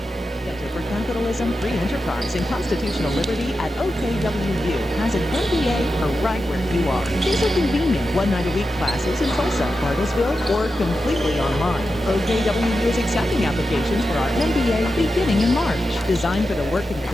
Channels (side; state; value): both; normal; correlation 0.90